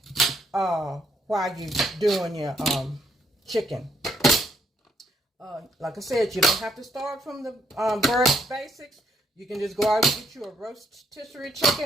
while you're doing your chicken. Like I said, you don't have to start from the very basics. You can just go out and get you a rotisserie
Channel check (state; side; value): normal; both; correlation 0.72